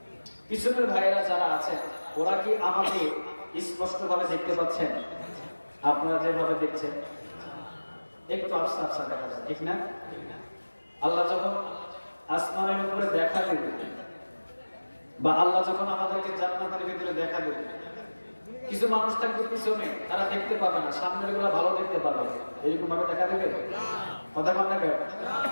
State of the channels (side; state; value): both; inverted; correlation -1.00